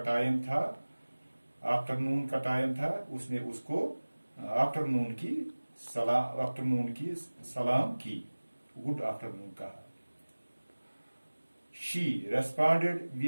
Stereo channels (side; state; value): both; inverted; correlation -1.00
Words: था, आफ्टरनून का टाइम था. उसने उसको आफ्टरनून की सलाम की, गुड आफ्टरनून कहा. She responded